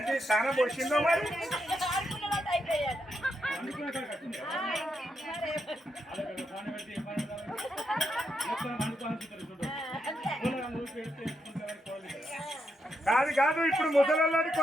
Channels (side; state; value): both; normal; correlation 0.81